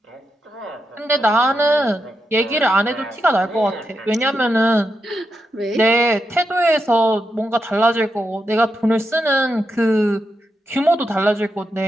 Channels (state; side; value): normal; both; correlation 0.86